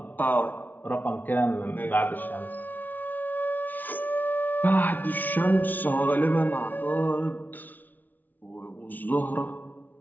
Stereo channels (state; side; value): late; right; 0.082 ms